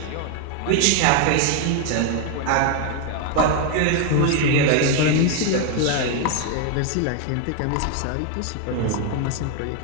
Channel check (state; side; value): different; both; correlation 0.01